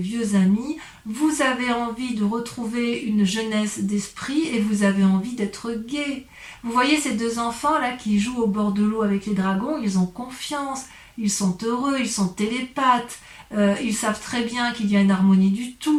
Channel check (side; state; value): both; identical; correlation 1.00